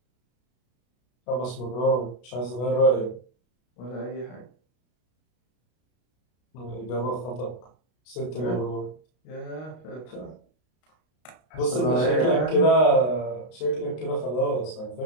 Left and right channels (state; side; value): late; right; 32 ms